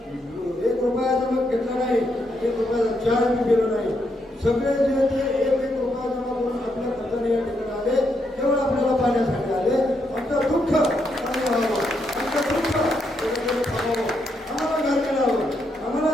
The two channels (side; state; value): both; normal; correlation 0.79